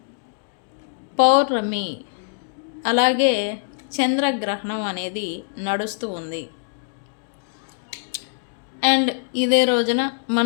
పౌర్ణమి, అలాగే చంద్రగ్రహణం అనేది నడుస్తూ ఉంది. అండ్ ఇదే రోజున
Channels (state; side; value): silent; right; digital silence